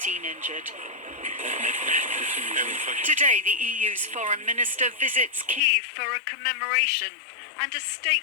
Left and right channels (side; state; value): right; drops out; at 5.6 s